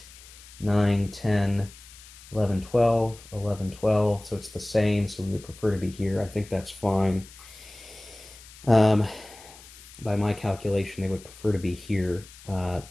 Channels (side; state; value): left; noise; hiss, 20 dB below the sound